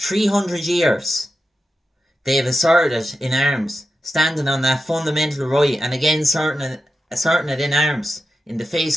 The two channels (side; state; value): both; normal; correlation 0.90